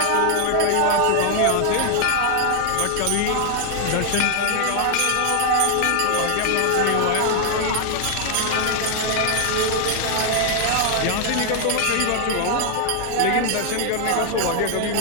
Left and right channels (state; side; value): different; both; correlation 0.00